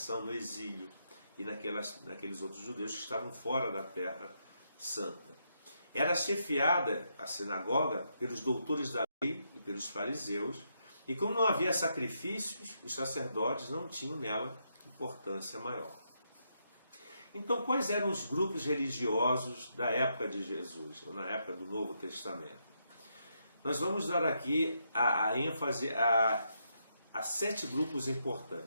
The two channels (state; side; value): inverted; both; correlation -0.80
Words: no exílio, e naqueles outros judeus que estavam fora da Terra Santa. Era chefiada, a sinagoga, pelos doutores da lei e pelos fariseus, e como não havia sacrifícios, os sacerdotes não tinham nela importância maior. Então, quais eram os grupos religiosos da época de Jesus, ou na época do Novo Testamento? Nós vamos dar aqui a ênfase a 7 grupos